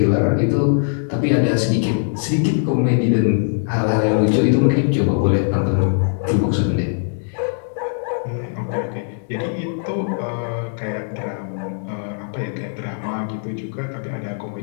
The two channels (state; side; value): silent; right; digital silence